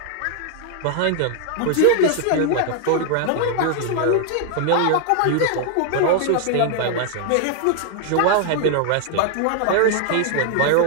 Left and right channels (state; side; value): different; both; correlation 0.00